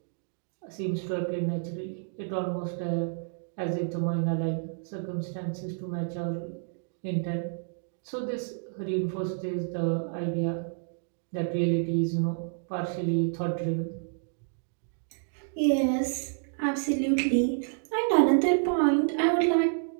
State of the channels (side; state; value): left; silent; digital silence